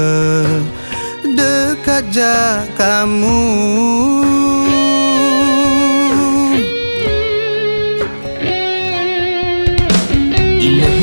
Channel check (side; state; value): both; inverted; correlation -1.00